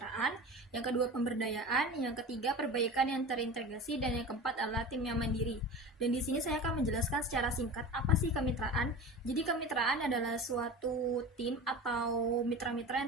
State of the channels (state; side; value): normal; both; correlation 0.32